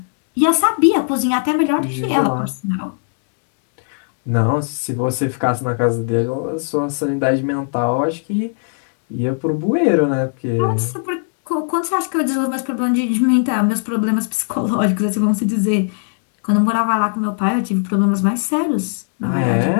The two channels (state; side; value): silent; right; digital silence